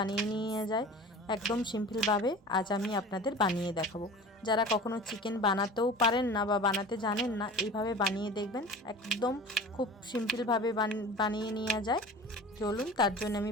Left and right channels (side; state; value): both; normal; correlation 0.38